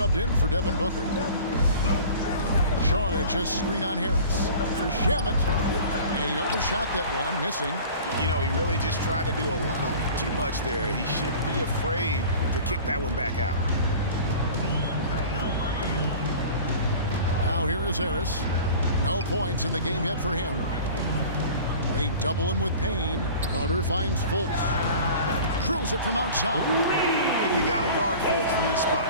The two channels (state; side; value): inverted; both; correlation -0.41